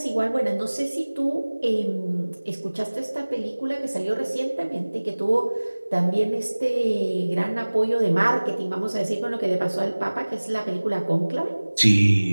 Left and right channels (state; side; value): inverted; both; correlation -1.00